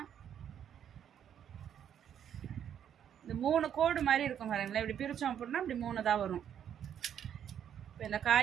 இந்த 3 கோடு மாதிரி இருக்கும் பாருங்களேன். இப்படி பிரித்தோம் அப்படின்னா இப்படி 3 தான் வரும். இப்போ இந்த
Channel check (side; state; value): left; quieter; 9.2 dB